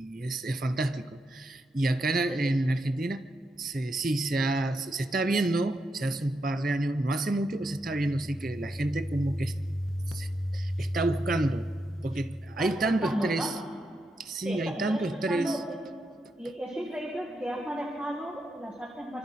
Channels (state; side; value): normal; both; correlation 0.83